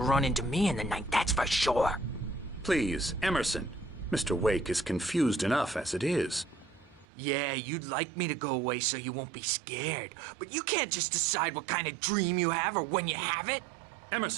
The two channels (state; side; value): drops out; left; at 7.1 s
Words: run into me in the night, that's for sure. Please, Emerson. Mr. Wake is confused enough as it is. Yeah, you'd like me to go away so you won't be scared. But you can't just decide what kind of dream you have or when you have it.